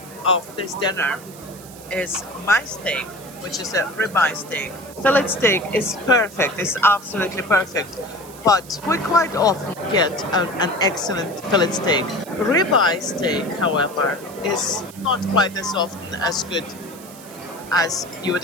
of this dinner is my steak, which is a ribeye steak. Fillet steak is perfect, it's absolutely perfect. But we quite often get an excellent fillet steak. Ribeye steak, however, is not quite as often as good as you would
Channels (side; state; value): right; noise; hiss, 19 dB below the sound